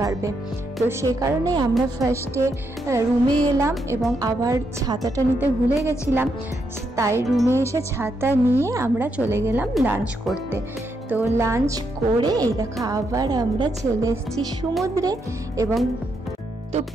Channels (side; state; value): both; normal; correlation 0.80